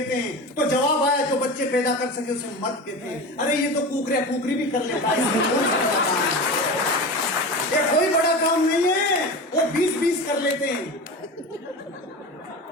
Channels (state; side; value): normal; both; correlation 0.28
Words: हैं? तो जवाब आया जो बच्चे पैदा कर सके उसे मर्द कहते हैं। अरे ये तो कुकरी भी कर लेता है, ये कोई बड़ा काम नहीं है, वो 20-20 कर लेते हैं।